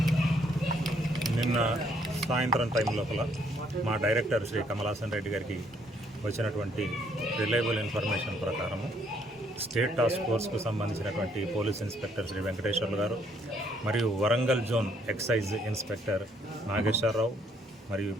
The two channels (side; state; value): both; normal; correlation 0.68